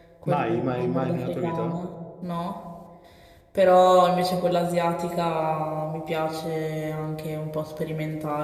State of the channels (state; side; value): identical; both; correlation 1.00